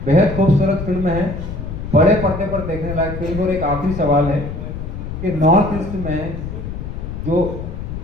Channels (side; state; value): left; noise; rumble, 7 dB below the sound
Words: बेहद खूबसूरत फिल्म है, बड़े पर्दे पर देखने लायक फिल्म। और एक आखिरी सवाल है कि नॉर्थ ईस्ट में जो